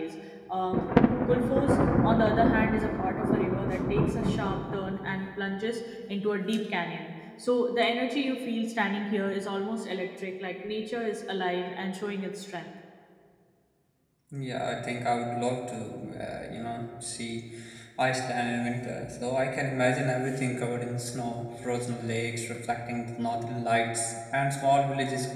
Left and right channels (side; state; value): both; identical; correlation 1.00